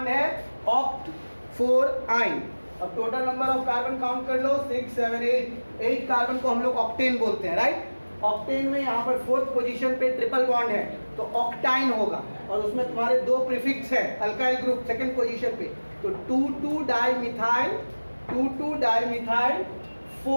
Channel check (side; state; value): both; inverted; correlation -1.00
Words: है, ऑक्ट 4 आइन। अब total number of carbon count कर लो, 6 7 8 कार्बन को हम लोग ऑक्टेन बोलते हैं, राइट। ऑक्टेन में यहाँ पर 4th पोजीशन पे ट्रिपल बॉन्ड है तो ऑक्टाइन होगा, और उसमें तुम्हारे 2 प्रीफिक्स है अल्काइल ग्रुप 2nd पोजीशन पे, तो 2,2-डाइमिथाइल